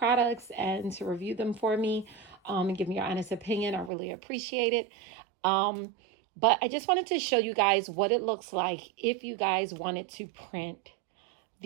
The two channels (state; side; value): drops out; left; at 3.9 s